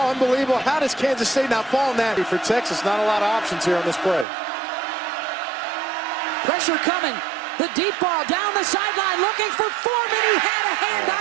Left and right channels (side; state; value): left; drops out; at 4.2 s